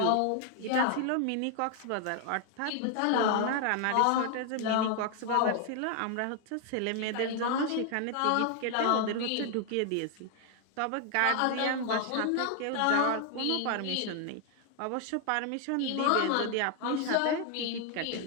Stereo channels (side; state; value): both; different; correlation 0.00